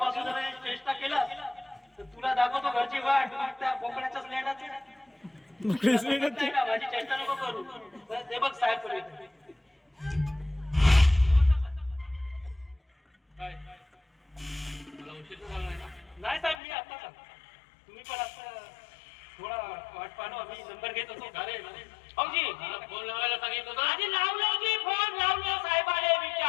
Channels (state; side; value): drops out; right; at 16.6 s